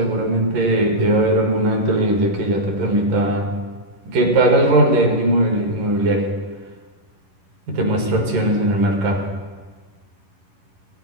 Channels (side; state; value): left; late; 11 ms